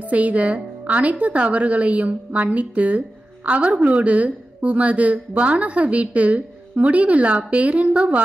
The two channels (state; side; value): normal; both; correlation 0.94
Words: செய்த அனைத்து தவறுகளையும் மன்னித்து அவர்களோடு உமது வானக வீட்டில் முடிவில்லா பேரின்ப